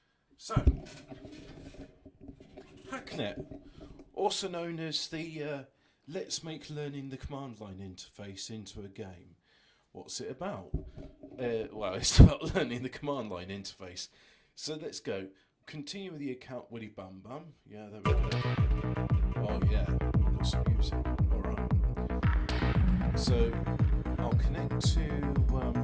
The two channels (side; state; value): both; identical; correlation 1.00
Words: So, Hacknet, also known as the Let's Make Learning the Command Line interface into a game. What's it about? Well, it's about learning the command line interface. So let's go. Continue with the account Willy Bum Bum. Yeah, there we go. Oh yeah, we've got some music. Alright. So I'll connect to